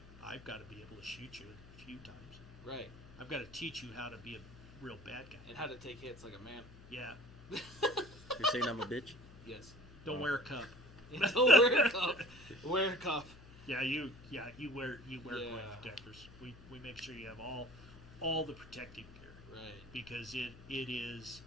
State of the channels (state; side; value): noise; left; hum, 19 dB below the sound